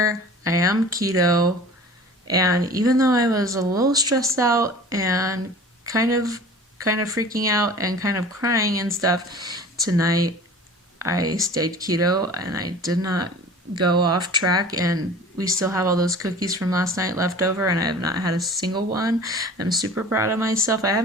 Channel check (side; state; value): both; normal; correlation 0.42